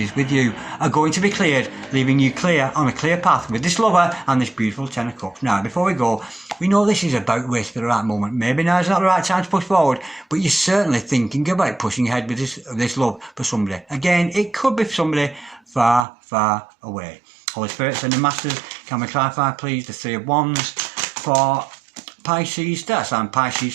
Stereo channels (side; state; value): left; drops out; at 16.1 s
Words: with you are going to be cleared, leaving you clear on a clear path with this lover and this beautiful Ten of Cups. Now, before we go, we know this is about to wait for the right moment. Maybe now is not the right time to push forward, but you're certainly thinking about pushing ahead with this love for somebody. Again, it could be somebody far, far away. Holy Spirit, Sending Masters, can we clarify, please, the Three of Wands for Pisces, that's and Pisces,